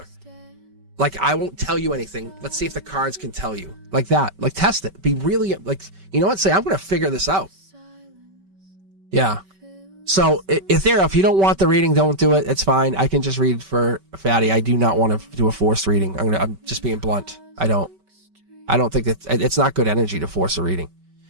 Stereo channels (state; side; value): late; left; 5.2 ms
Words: Like, I won't tell you anything. Let's see if the cards can tell you. Like that. Like, test it. Be really, like, you know what? Say, I'm going to figure this out. Yeah. So, Ethereal, if you don't want the reading, don't do it. It's fine. I can just read for Fatty. I do not want to do a forced reading. I'm just being blunt. I don't. I don't think it's not good energy to force a reading.